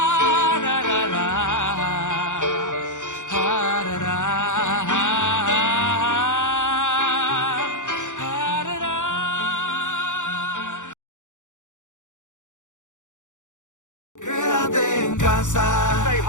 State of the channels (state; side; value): late; right; 0.86 ms